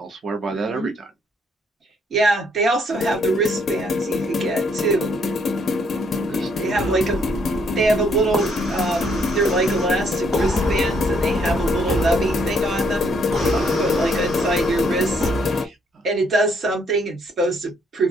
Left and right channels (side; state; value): both; normal; correlation 0.69